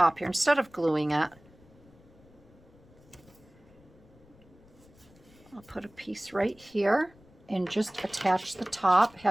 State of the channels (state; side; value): noise; left; rumble, 26 dB below the sound